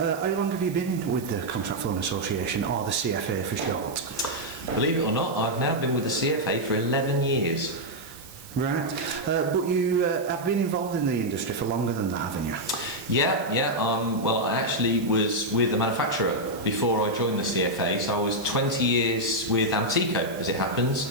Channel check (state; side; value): noise; right; hiss, 18 dB below the sound